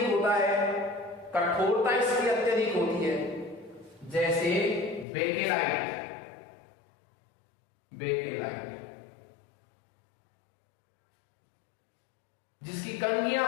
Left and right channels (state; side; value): drops out; right; at 5.1 s